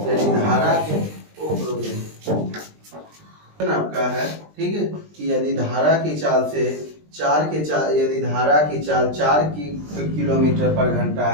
धारा के आपका है, ठीक है, कि यदि धारा की चाल से यदि धारा की चाल 4 किलोमीटर पर घंटा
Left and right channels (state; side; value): late; left; 20 ms